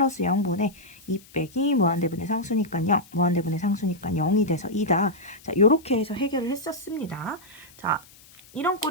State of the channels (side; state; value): left; noise; hiss, 24 dB below the sound